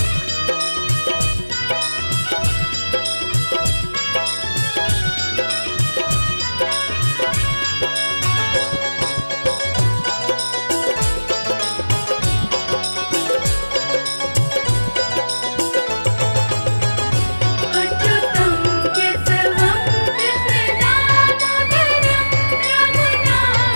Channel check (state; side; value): inverted; both; correlation -1.00